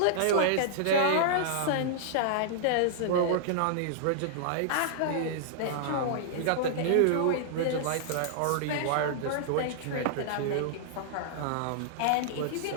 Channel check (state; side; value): different; both; correlation -0.01